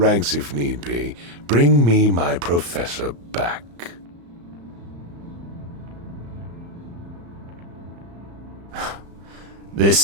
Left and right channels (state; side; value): late; left; 35 ms